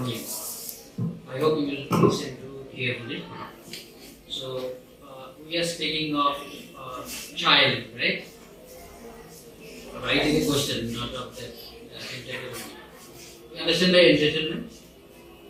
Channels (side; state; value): both; identical; correlation 1.00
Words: you. I hope you will listen to carefully. So we are speaking of child, right? Right in the question, not of that entitlement. You understand by entitlement?